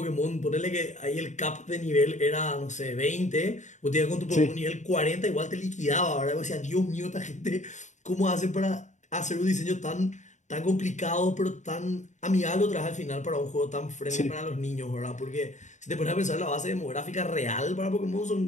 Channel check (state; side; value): late; right; 0.35 ms